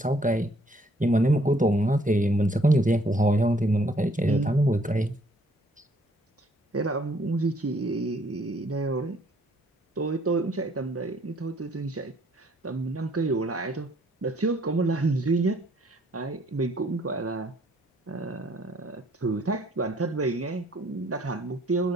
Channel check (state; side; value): normal; both; correlation 0.63